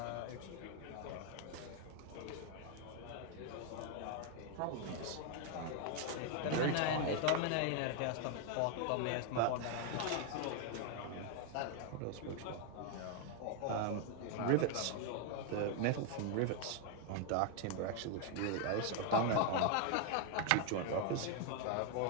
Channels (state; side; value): different; both; correlation 0.00